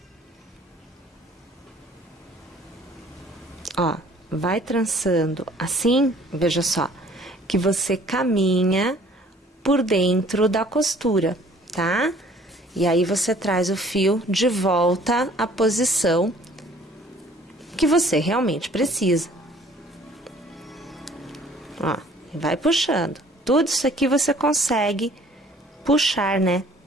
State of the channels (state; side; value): normal; both; correlation 0.55